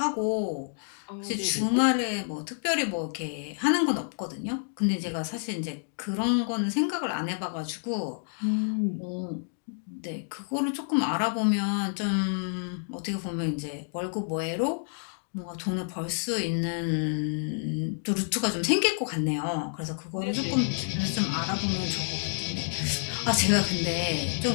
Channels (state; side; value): silent; right; digital silence